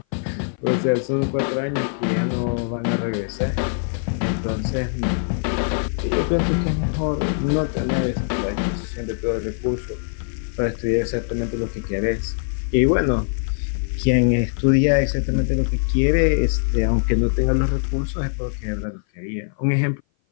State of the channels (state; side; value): silent; right; 57 dB below the other